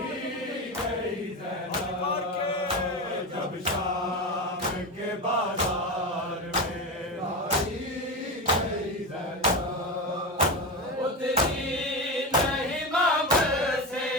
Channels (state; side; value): normal; both; correlation 0.19